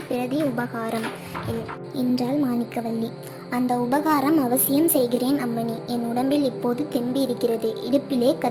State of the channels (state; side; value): identical; both; correlation 1.00